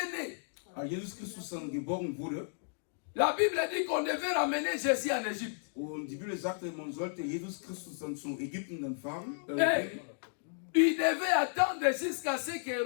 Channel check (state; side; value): silent; right; digital silence